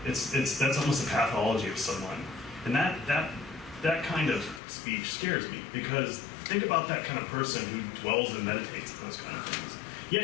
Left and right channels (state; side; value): drops out; right; at 4.6 s